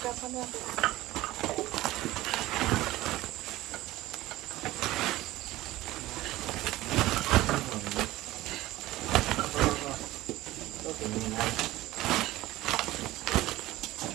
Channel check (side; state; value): left; quieter; 17.1 dB